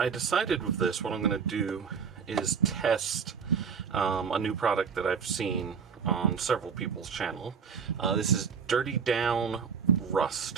decided with this, what I'm going to do is test a new product that I've seen on several people's channel. This is Dirty Down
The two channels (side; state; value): left; quieter; 6.3 dB